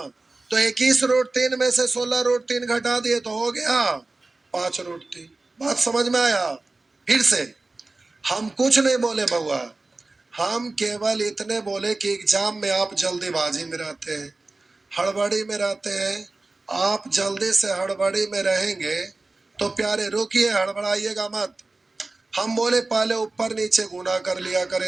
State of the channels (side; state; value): left; quieter; 3.3 dB